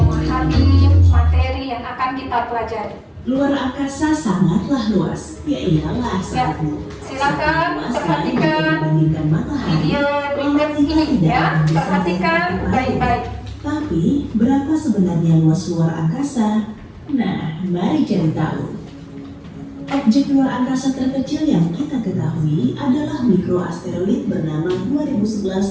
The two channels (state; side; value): identical; both; correlation 1.00